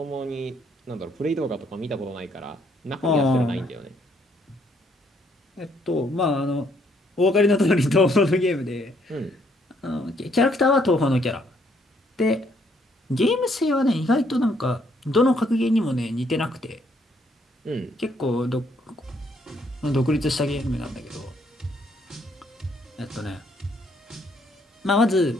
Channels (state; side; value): normal; both; correlation 0.69